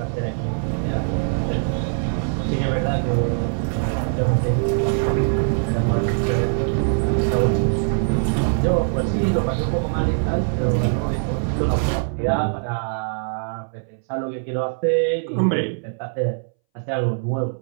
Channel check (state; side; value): silent; left; 62 dB below the other